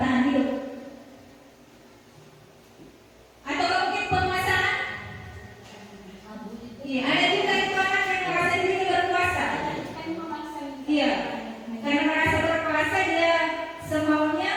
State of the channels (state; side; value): identical; both; correlation 1.00